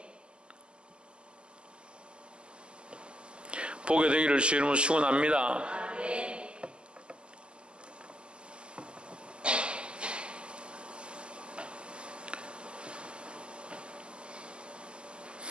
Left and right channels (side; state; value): left; late; 0.056 ms